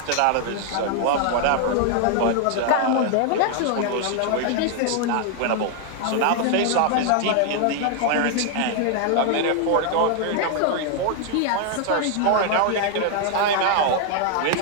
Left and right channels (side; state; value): both; different; correlation 0.00